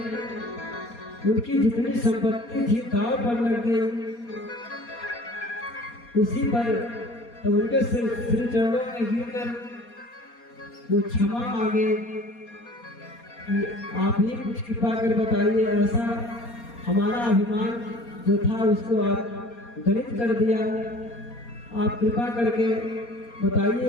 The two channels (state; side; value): late; right; 4.2 ms